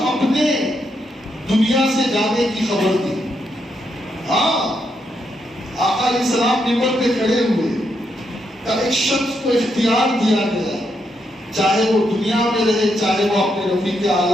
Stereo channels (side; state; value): both; normal; correlation 0.80